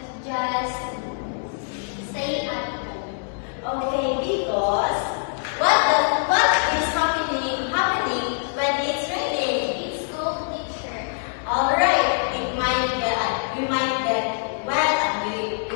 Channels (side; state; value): right; silent; digital silence